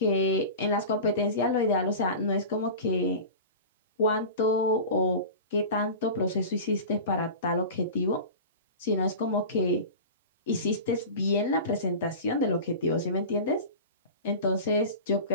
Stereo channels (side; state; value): both; inverted; correlation -0.32